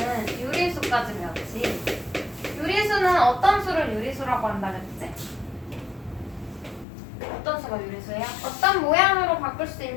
유리수까지 배웠지. 유리수는 어떤 수를 유리수라고 한다 그랬지? 어떤 수가 유리수예요? 어떤 모양으로 바꿀 수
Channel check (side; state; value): right; drops out; at 6.9 s